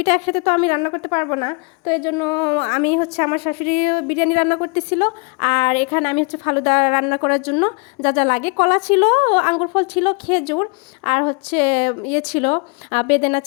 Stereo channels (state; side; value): quieter; right; 33.1 dB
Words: একসাথে তো আমি রান্না করতে পারবো না, তো এই জন্য আমি হচ্ছে আমার শাশুড়ি বিরিয়ানি রান্না করতেছিল, আর এখানে আমি হচ্ছে ফালুদা রান্না করার জন্য যা যা লাগে, কলা ছিল, আঙ্গুর ফল ছিল, খেজুর, আর হচ্ছে ইয়ে ছিল, বেদেনা